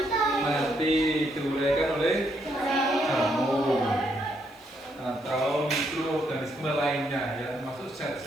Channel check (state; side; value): noise; left; hiss, 29 dB below the sound